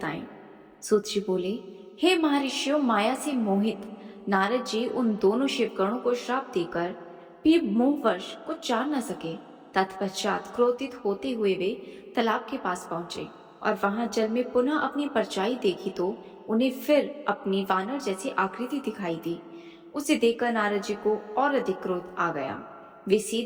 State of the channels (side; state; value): both; identical; correlation 1.00